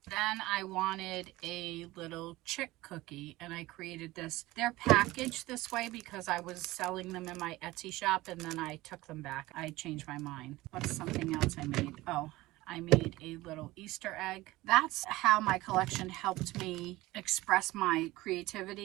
Then I wanted a little chick cookie and I created this. They're packaged this way because I was selling them in my Etsy shop and then I took them back. I changed my mind. What's something else I made? Oh, I made a little Easter egg. That's how my collection helped me express my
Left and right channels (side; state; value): left; quieter; 18.8 dB